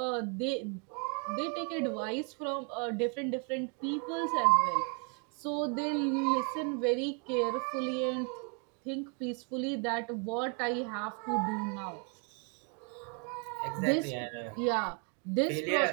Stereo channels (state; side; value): quieter; left; 36.8 dB